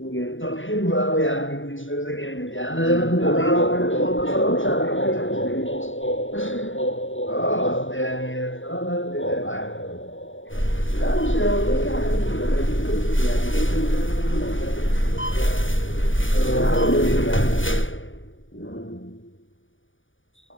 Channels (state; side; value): late; right; 0.57 ms